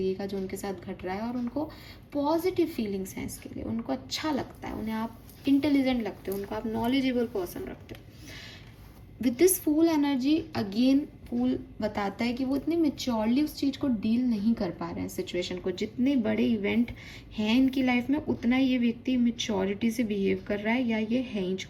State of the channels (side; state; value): both; identical; correlation 1.00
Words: का जो उनके साथ घट रहा है, और उनको पॉजिटिव फीलिंग्स हैं इसके लिए, उनको अच्छा लगता है, उन्हें आप इंटेलिजेंट लगते हो, उनको आप नॉलेजेबल पर्सन रखते हो। With this fool energy again, fool बताता है कि वो इतने मेच्योरली उस चीज़ को डील नहीं कर पा रहे हैं, सिचुएशन को। जितने बड़े इवेंट हैं इनकी लाइफ में, उतना ये व्यक्ति मेच्योरिटी से बिहेव कर रहा है, या ये है ही